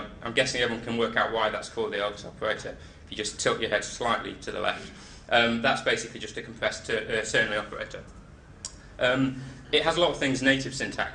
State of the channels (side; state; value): both; identical; correlation 1.00